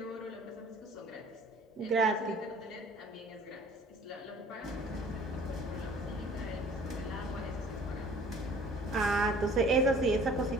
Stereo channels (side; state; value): both; normal; correlation 0.51